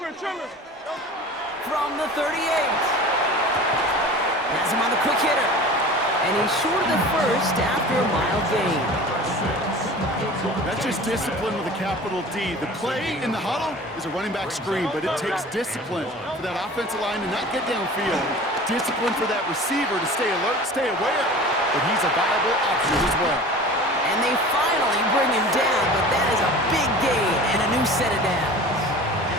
From the 38. Has him on the quick hitter. And he's short of the first after a mild gain. That's just discipline with a capital D. The play in the huddle is a running back screen, but it takes discipline for that offensive line to not get downfield. Discipline for that receiver to stay alert, stay aware. But he's a viable option as well. And they finally bring him down, but that is a big gain and a new set of downs.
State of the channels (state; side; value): normal; both; correlation 0.39